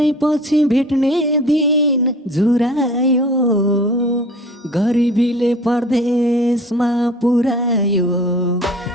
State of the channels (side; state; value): both; normal; correlation 0.44